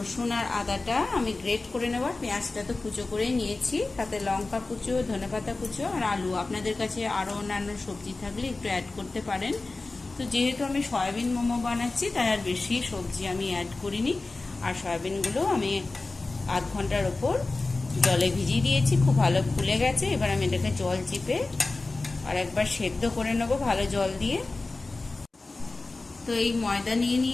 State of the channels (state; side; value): quieter; right; 3.4 dB